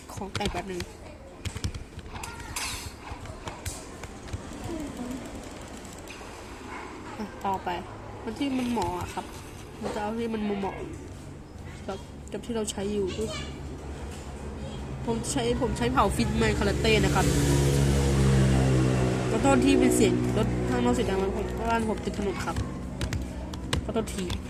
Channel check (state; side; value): identical; both; correlation 1.00